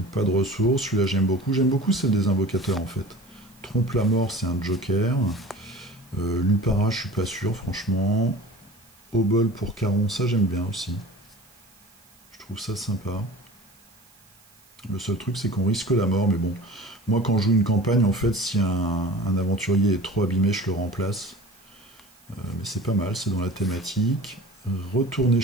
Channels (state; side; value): noise; right; hiss, 29 dB below the sound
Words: pas de ressources, celui-là j'aime beaucoup celle des invocateurs en fait. Trompe la mort, c'est un joker. Lupara, je suis pas sûr, franchement. Obol pour Caron, ça j'aime bien aussi. Je trouve ça sympa. Le seul truc, c'est qu'on risque la mort, mais bon. Moi, quand je joue une campagne, en fait, si un aventurier est trop abîmé, je le remplace. Mais c'est pas mal, c'est dans la thématique. Retourner